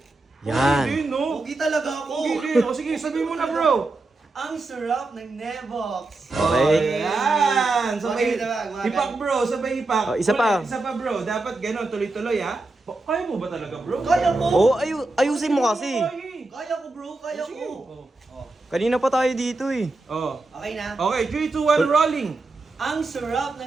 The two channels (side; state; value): left; quieter; 3.2 dB